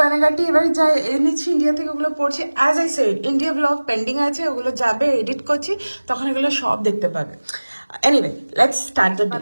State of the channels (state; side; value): inverted; both; correlation -1.00